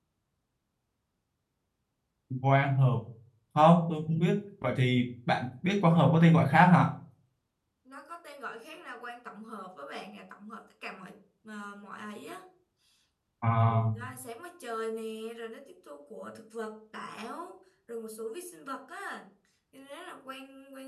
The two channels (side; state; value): both; identical; correlation 1.00